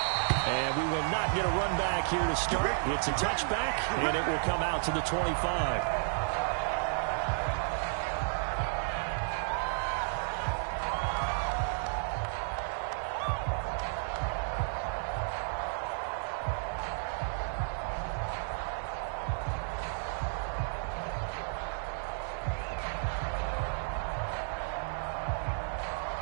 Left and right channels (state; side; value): silent; left; 56 dB below the other